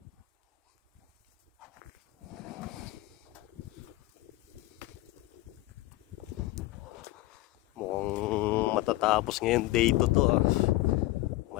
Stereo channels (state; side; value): quieter; right; 18.6 dB